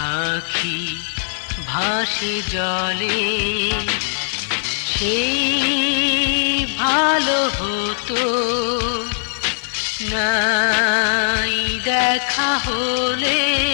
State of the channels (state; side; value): silent; right; digital silence